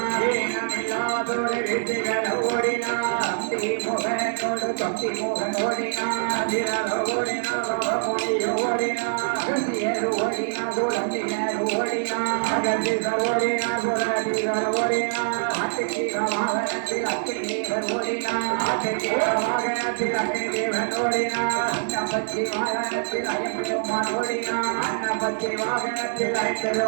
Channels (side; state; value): left; silent; digital silence